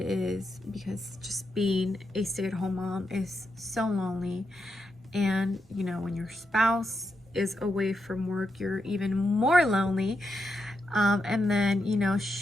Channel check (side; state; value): both; normal; correlation 0.84